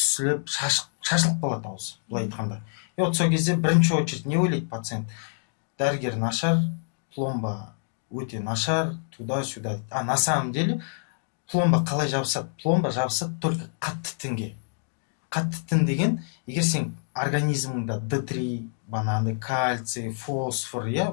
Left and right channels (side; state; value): right; silent; digital silence